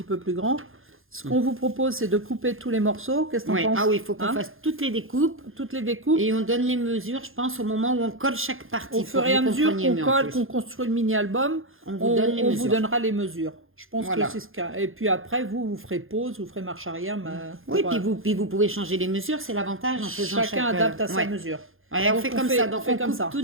peu plus grand. Ce qu'on vous propose, c'est de couper tous les morceaux. Qu'est-ce que tu en penses? Ah oui, il faut qu'on fasse toutes les découpes. Toutes les découpes. Et on donne les mesures, je pense, au moment où on colle chaque partie. Au fur et à mesure qu'on colle, qu'on construit le mini-album, on vous donnera les mesures. Je pense que c'est ce cas. Et puis après, vous ferez pause, vous ferez marche arrière. Oui, puis vous pouvez changer les mesures, c'est l'avantage en faisant chacun adapte à sa mesure. Ouais, on fait comme ça. Donc on coupe tout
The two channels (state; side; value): late; left; 0.60 ms